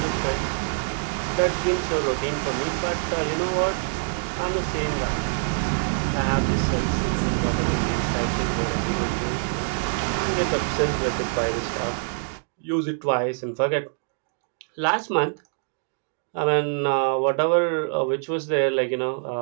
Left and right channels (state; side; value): silent; left; digital silence